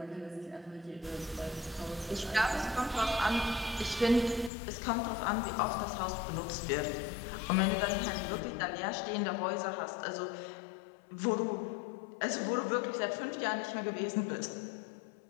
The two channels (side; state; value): right; drops out; at 4.5 s